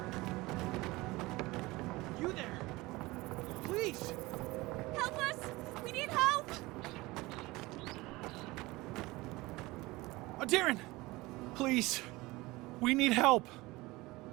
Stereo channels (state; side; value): quieter; left; 21.1 dB